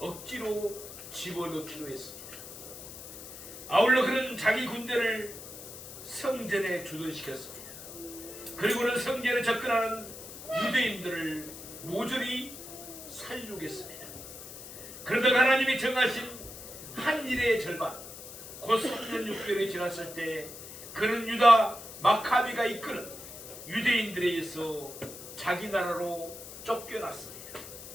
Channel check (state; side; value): noise; left; hiss, 13 dB below the sound